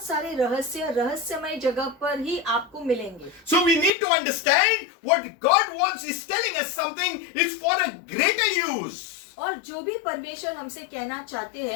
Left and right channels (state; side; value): drops out; right; at 3.9 s